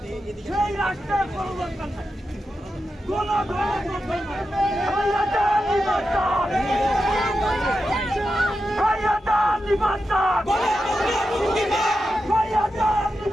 সেই রাষ্ট্রের কোনো দরকার নাই, কোন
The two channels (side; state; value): both; normal; correlation 0.89